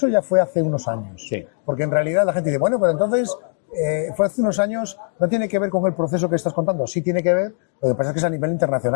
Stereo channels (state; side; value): silent; right; digital silence